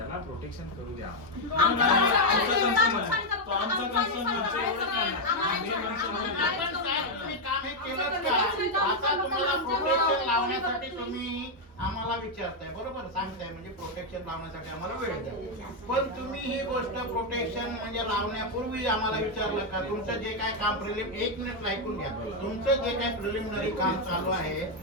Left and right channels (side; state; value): both; normal; correlation 0.01